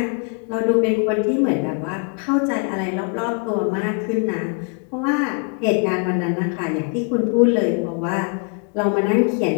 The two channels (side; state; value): right; quieter; 35.8 dB